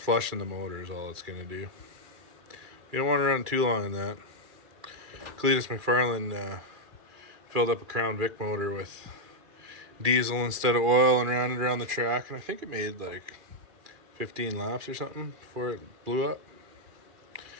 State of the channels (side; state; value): left; late; 2.4 ms